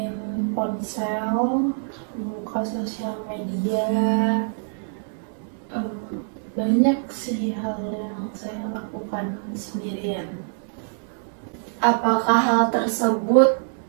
ponsel, buka sosial media. Banyak sih hal yang saya lakukan sendirian. Apakah hal tersebut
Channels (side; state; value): left; silent; digital silence